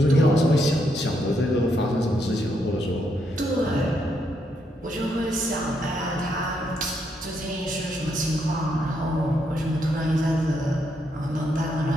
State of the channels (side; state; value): both; normal; correlation 0.77